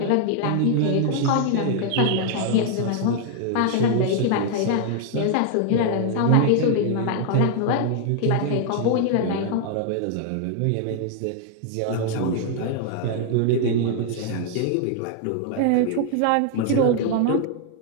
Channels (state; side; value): different; both; correlation 0.00